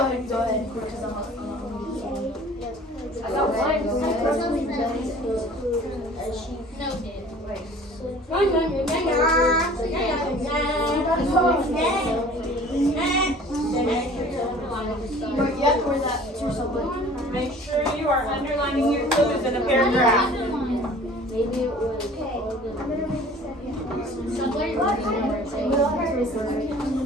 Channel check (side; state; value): both; normal; correlation 0.48